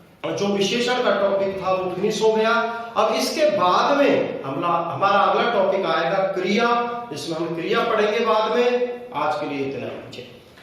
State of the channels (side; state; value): both; identical; correlation 1.00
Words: जो विशेषण का टॉपिक था वो फिनिश हो गया। अब इसके बाद में हमारा अगला टॉपिक आएगा क्रिया, इसमें हम क्रिया पढ़ेंगे बाद में। आज के लिए इतना ही।